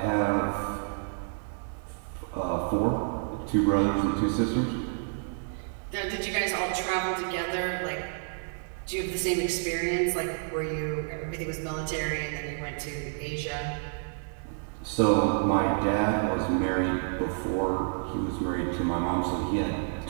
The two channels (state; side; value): silent; left; digital silence